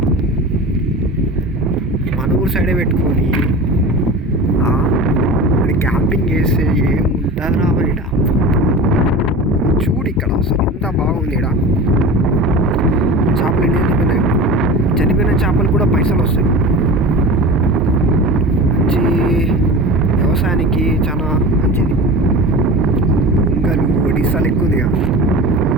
మన ఊరు సైడే పెట్టుకొని క్యాంపింగ్ చేస్తే ఏముంటుంది రా మరి. చూడు ఇక్కడ అసలు ఎంత బాగుంది ఇక్కడ. చేపలు ఎన్ని చనిపోయిన చేపలు కూడా పైసలు వస్తాయి. మంచి వ్యవసాయానికి చాలా మంచిది. కుంకలు ఒడిస్సాలు ఎక్కువ ఉంది.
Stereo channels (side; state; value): both; normal; correlation 0.33